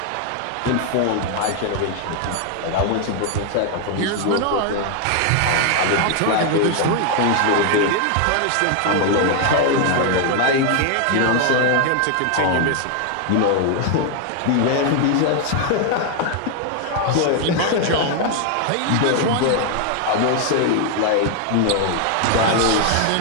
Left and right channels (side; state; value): both; different; correlation 0.00